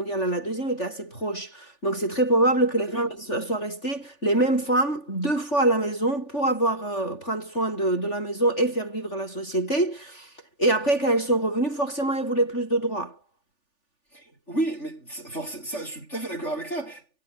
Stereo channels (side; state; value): right; late; 3.4 ms